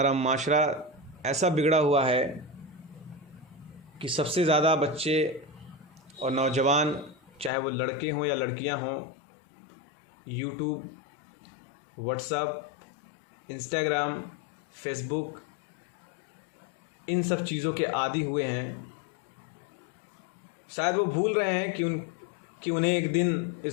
माशरा ऐसा बिगड़ा हुआ है कि सबसे ज़्यादा बच्चे और नौजवान, चाहे वो लड़के हों या लड़कियां हों, यूट्यूब, व्हाट्सएप, इंस्टाग्राम, फेसबुक, इन सब चीज़ों के आदी हुए हैं। शायद वो भूल रहे हैं कि उन्हें एक दिन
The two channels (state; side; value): drops out; right; at 7.5 s